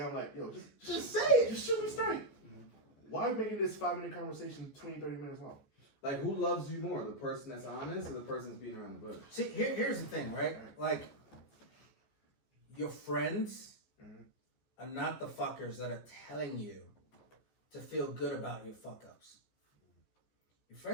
like, yo, just say it. Just shoot me straight. Why are we making this 5-minute conversation 20, 30 minutes long? Like, who loves you more, the person that's honest or the person that's beating around the bush? See, here's the thing, right? Like, your friends are not the fuckers that are telling you to feel good about your fuck-ups. Your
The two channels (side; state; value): right; late; 14 ms